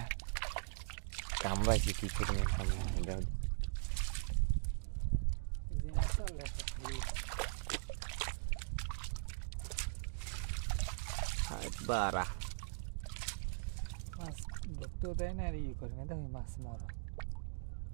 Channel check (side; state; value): left; silent; digital silence